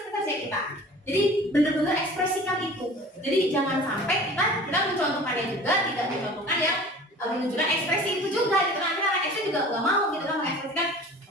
kita. Jadi benar-benar ekspresikan itu. Jadi jangan sampai kita mencontohkannya juga tidak mencontohkan yang menunjukkan ekspresi itu juga. Gitu kan anak SD juga nggak mau gitu kan mengekspresikan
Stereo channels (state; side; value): normal; both; correlation 0.43